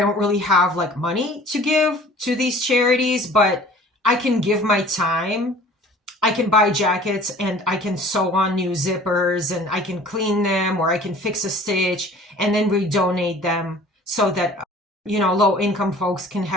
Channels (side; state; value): both; normal; correlation 0.48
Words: really have like money to give to these charities, but I can give my time. I can buy jackets and I can sew on new zippers and I can clean them, or I can fix a stitch and then redonate them so that, low income folks can